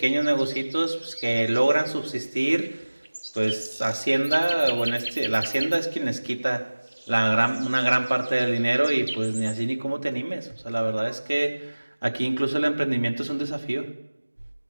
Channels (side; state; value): both; inverted; correlation -1.00